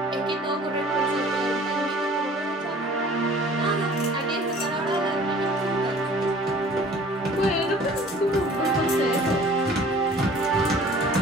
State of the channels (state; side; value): normal; both; correlation 0.49